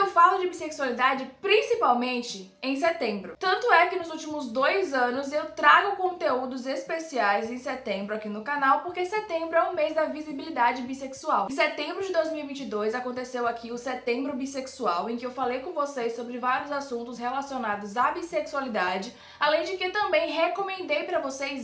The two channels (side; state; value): both; identical; correlation 1.00